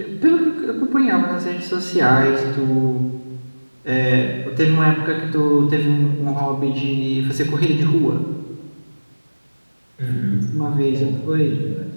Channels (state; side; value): inverted; both; correlation -1.00